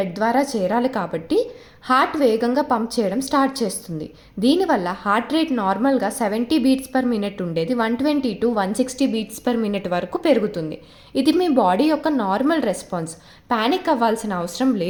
ద్వారా చేరాలి కాబట్టి హార్ట్ వేగంగా పంప్ చేయడం స్టార్ట్ చేస్తుంది. దీనివల్ల హార్ట్ రేట్ నార్మల్గా 70 బీట్స్ పర్ మినిట్ ఉండేది 120 to 160 బీట్స్ పర్ మినిట్ వరకు పెరుగుతుంది. ఇది మీ బాడీ యొక్క నార్మల్ రెస్పాన్స్. పానిక్ అవ్వాల్సిన అవసరం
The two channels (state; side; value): identical; both; correlation 1.00